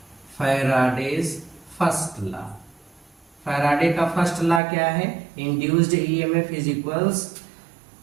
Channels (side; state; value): left; drops out; at 4.6 s